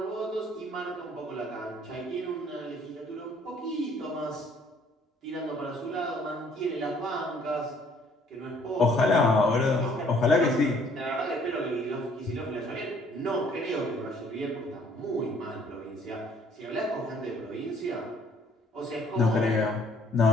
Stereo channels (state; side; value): normal; both; correlation 0.60